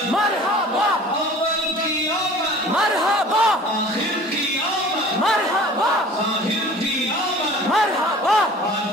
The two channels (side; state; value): both; normal; correlation 0.45